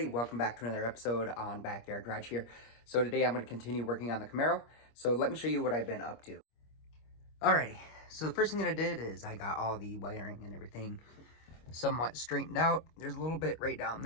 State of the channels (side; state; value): right; late; 25 ms